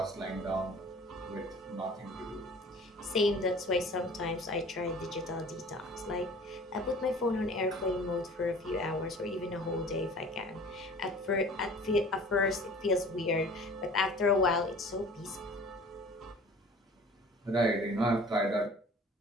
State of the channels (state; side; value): normal; both; correlation 0.46